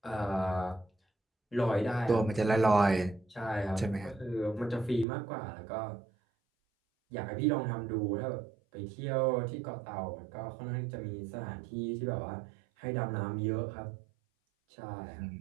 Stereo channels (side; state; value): left; drops out; at 5.1 s